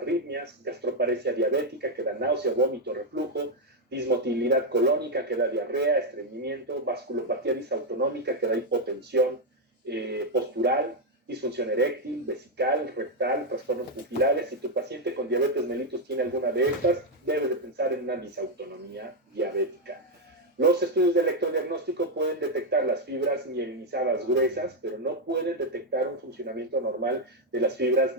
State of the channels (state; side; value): normal; both; correlation 0.03